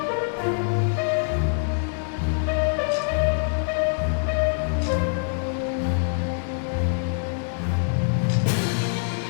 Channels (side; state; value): right; silent; digital silence